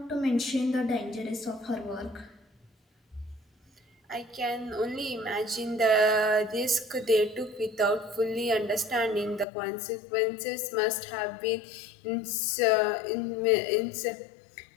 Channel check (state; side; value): drops out; right; at 9.5 s